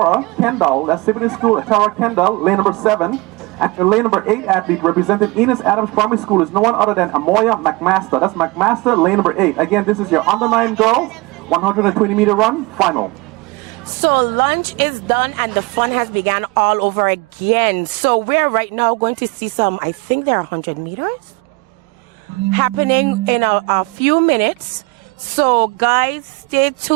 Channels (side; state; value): left; quieter; 24.2 dB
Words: Kendall. That's Siboney School, Atara Kendall, lane number 7. And your lane number 8 athlete representing Enos Adams Primary School is no one other than Amoya McMaster. That's McMaster, lane number 8. Again, this is your under 9 girls 120-meter run final. So lunch is done and the fun has begun all over again. So we're right now going to see some, I think they're 100 meters happening in a few minutes. So guys, stay